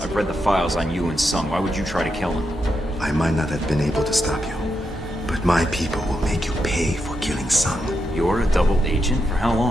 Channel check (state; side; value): normal; both; correlation 0.84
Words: read the files on you and Sung. Why would you try to kill him? I might not have been able to stop you, but my people will make you pay for killing Sung. You're a double agent? For how